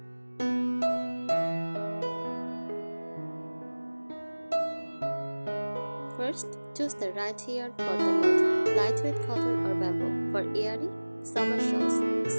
First, choose the right yarn for the mold: lightweight cotton or bamboo for airy summer shawls,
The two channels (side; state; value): both; inverted; correlation -1.00